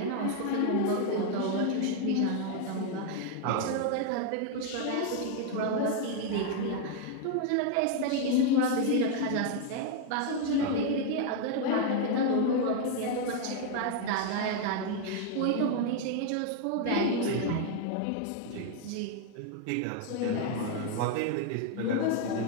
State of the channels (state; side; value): different; both; correlation 0.00